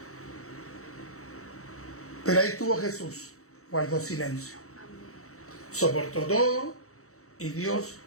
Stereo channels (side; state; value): right; late; 0.64 ms